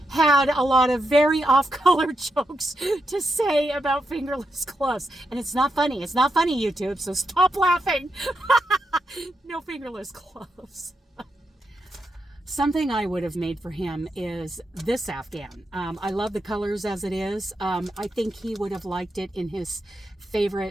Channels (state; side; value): normal; both; correlation 0.84